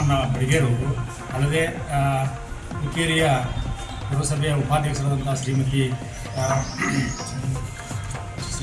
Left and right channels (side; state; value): both; identical; correlation 1.00